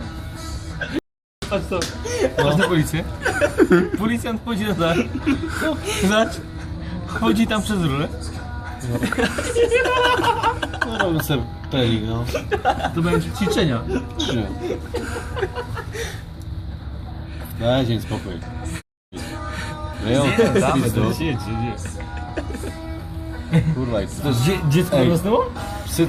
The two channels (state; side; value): identical; both; correlation 1.00